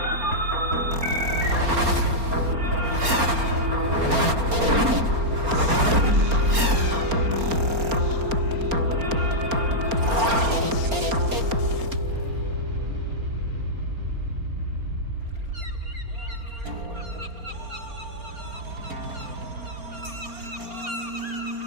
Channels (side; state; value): left; late; 4.3 ms